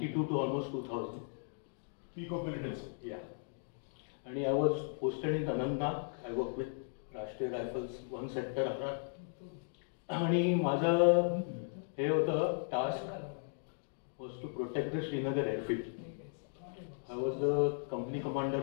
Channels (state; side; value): silent; right; digital silence